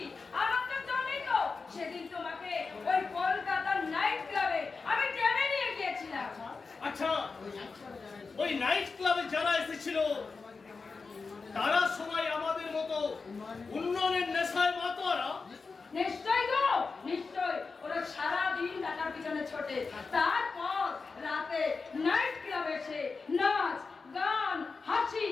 আমার তো জানোই তো, সেদিন তোমাকে ওই কলকাতার নাইট ক্লাবে আমি টেনে নিয়ে গিয়েছিলাম। আচ্ছা, ওই নাইট ক্লাবে যারা এসেছিল তারা সবাই আমাদের মতো উন্নয়নের নেশায় মাতোয়ারা? নিশ্চয় গো, নিশ্চয়। ওরা সারাদিন টাকার পিছনে ছোটে, তারপর রাতে নাইট ক্লাবে এসে নাচ গান হাসি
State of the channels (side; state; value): right; quieter; 4.5 dB